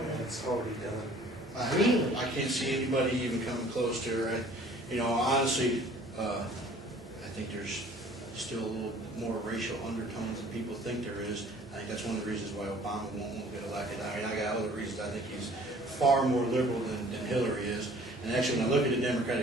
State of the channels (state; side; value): normal; both; correlation 0.52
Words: it's already done. Really? I can't see anybody even coming close to her. Honestly, I think there's still a little more racial undertones than people think there is. I think that's one of the reasons why Obama won't get elected. I mean, I got other reasons. I think he's far more liberal than Hillary is. And actually, when I look at the